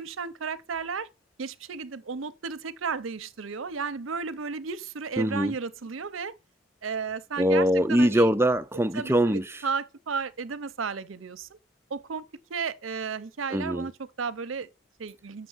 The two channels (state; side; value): normal; both; correlation 0.60